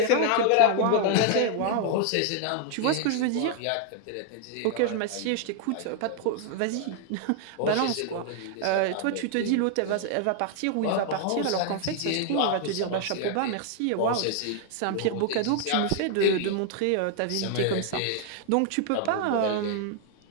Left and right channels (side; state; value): both; different; correlation 0.00